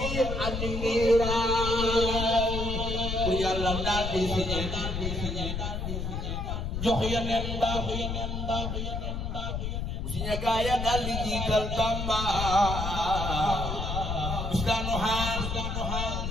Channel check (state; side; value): noise; left; rumble, 3 dB below the sound